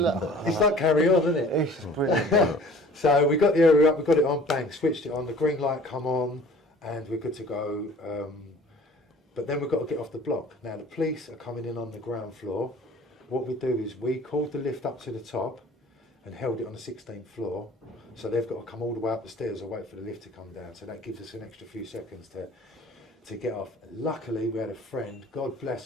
it's like Carry On, isn't it? It's brilliant. So we got the area up, we got it on, bang, switched it on, the green light come on, and we're good to go. But then we've got to get off the block. Now the police are coming in on the ground floor. What we do is we called the lift up to the top and held it on the 16th floor. So they've got to come all the way up the stairs or wait for the lift to come down. So that gives us an extra few seconds to get off. Luckily we had a friend, God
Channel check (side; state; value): both; normal; correlation 0.49